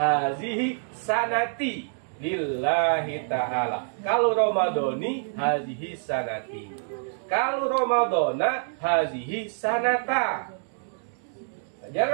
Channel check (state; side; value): silent; left; digital silence